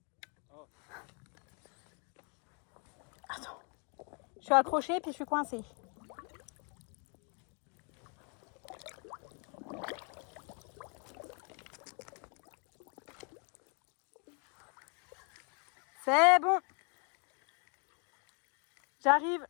Ah. Attends. Je suis accrochée puis je suis coincée. C'est bon. J'arrive.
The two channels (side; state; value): right; quieter; 37.6 dB